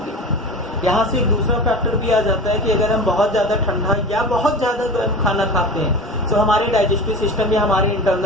यहाँ से एक दूसरा फैक्टर भी आ जाता है कि अगर हम बहुत ज़्यादा ठंडा या बहुत ज़्यादा गर्म खाना खाते हैं तो हमारे डाइजेस्टिव सिस्टम या हमारे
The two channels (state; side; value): normal; both; correlation 0.32